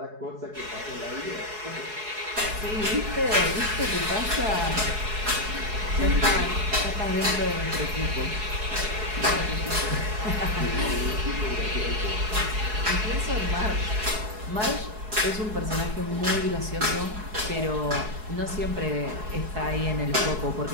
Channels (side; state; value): left; late; 4.7 ms